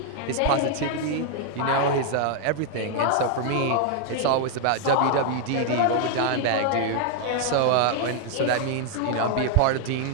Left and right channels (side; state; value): both; different; correlation 0.00